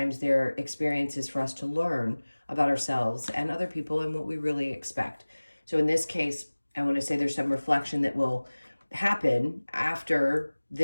their experience is for us to learn about ourselves and other people and what we really expect. So in this case, I want to say there's some reflection that will happen after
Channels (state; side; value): inverted; both; correlation -1.00